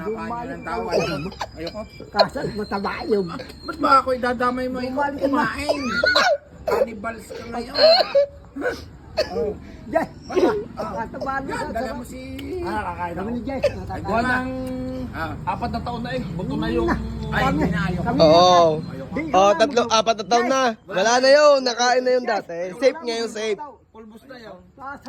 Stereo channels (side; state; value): both; identical; correlation 1.00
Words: Dumali. kain ng tao. Ayoko. Kasal, mataba yun. Ba't ba ako idadamay mo? Ikaw Dumali ka na. kumain. Cannibals ka ngayon. Oh. Jess, mataba na. Yan, dala mo si... Kakain Kami ako. ni Jess. Gawa ng Ah. 4 na taon na eh. Buto na yung... Ay, hindi na ayoko. Oo. Ayoko. Oh, 4 na taon na. Wala na yun. Nakain na yun dati. Safe ngayon, safe. Pulbos na yun.